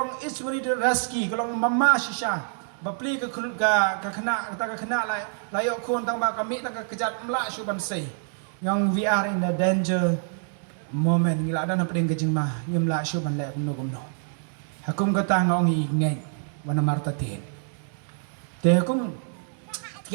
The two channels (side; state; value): left; silent; 61 dB below the other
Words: ismeri de raski kalong mama shisha bapli ka kena ta ka kena la yo kon tang ba kami ta ka kejat mla shu ban sei yang we are in the danger moment ngila dan pedeng ka jingma ngimla shu ban le kumno hakum ka ta ngong i ngai wana marta ten te hakum